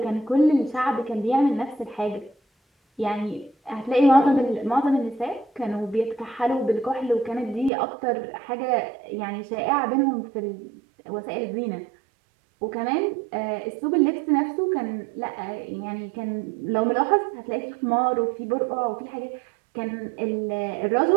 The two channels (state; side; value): drops out; left; at 7.7 s